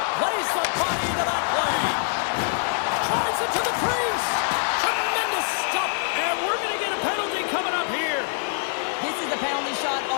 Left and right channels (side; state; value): right; silent; digital silence